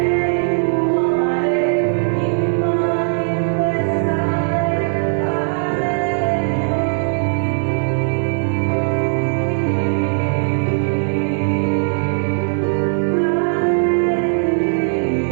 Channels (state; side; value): silent; left; digital silence